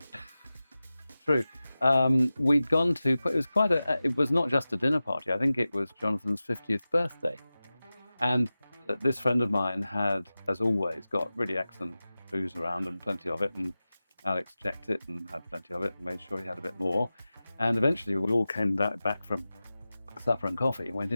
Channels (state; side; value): inverted; both; correlation -0.95